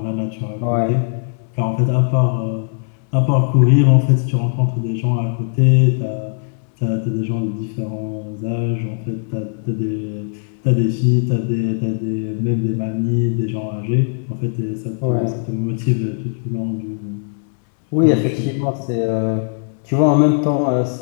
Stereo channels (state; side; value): silent; right; 67 dB below the other